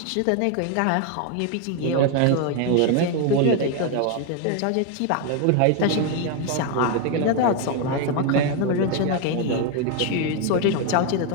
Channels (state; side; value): different; both; correlation 0.01